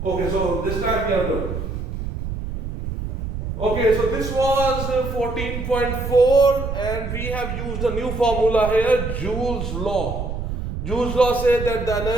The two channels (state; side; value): noise; right; rumble, 5 dB below the sound